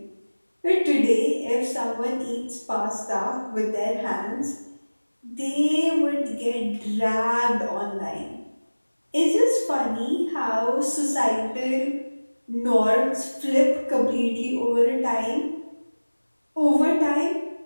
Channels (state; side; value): inverted; both; correlation -1.00